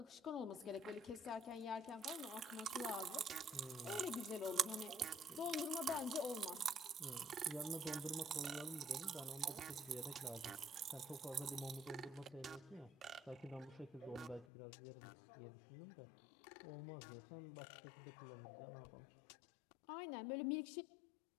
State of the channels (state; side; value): drops out; right; at 14.5 s